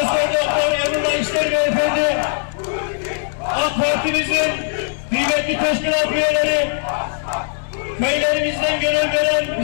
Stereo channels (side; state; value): right; silent; digital silence